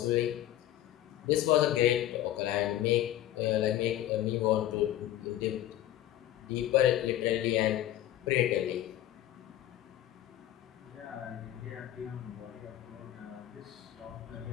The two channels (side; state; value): right; quieter; 13.1 dB